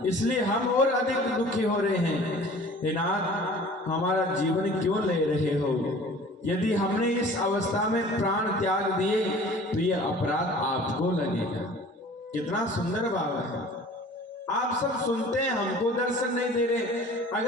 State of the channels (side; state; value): both; normal; correlation 0.46